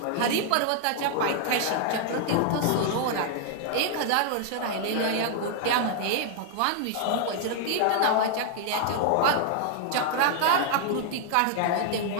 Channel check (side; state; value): both; different; correlation -0.01